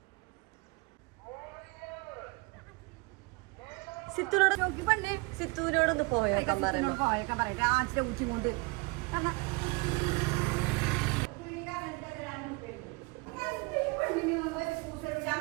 സിത്തുവിനോടൊന്ന് പോയേക്കാൻ പറയുമ്പോ ഉച്ചി കൊണ്ട്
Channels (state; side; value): quieter; left; 27.4 dB